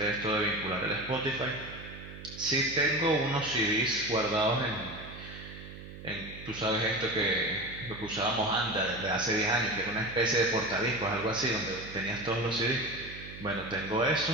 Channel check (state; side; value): noise; right; hum, 13 dB below the sound